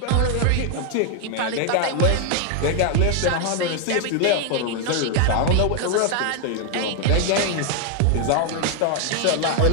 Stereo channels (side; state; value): both; different; correlation 0.01